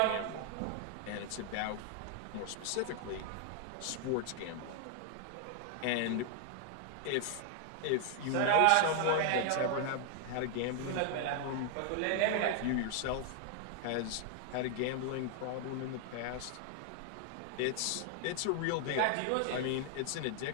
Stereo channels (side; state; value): both; different; correlation 0.00